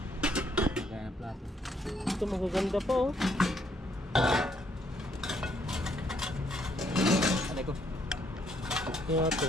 Gaya plato. Ito magaganda pa oh. Alay ko. Kaya ito.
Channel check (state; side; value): normal; both; correlation 0.71